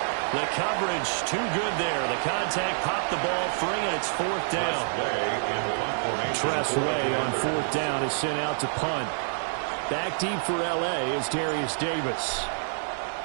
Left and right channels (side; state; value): left; silent; digital silence